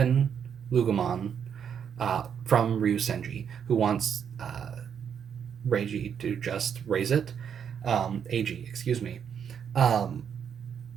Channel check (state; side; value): quieter; left; 7.8 dB